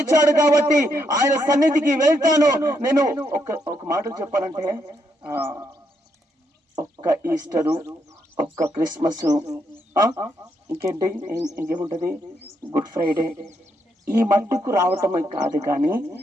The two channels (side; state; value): both; normal; correlation 0.77